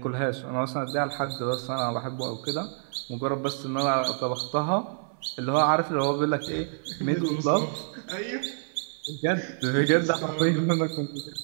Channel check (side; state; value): left; silent; 56 dB below the other